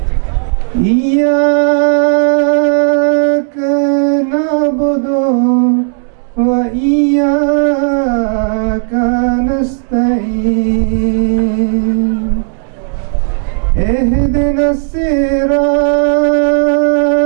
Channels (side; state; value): left; silent; digital silence